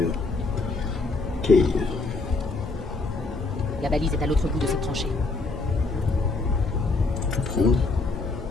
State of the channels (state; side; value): quieter; right; 3.6 dB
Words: Ok. La balise est à l'autre bout de cette tranchée. Je vais prendre.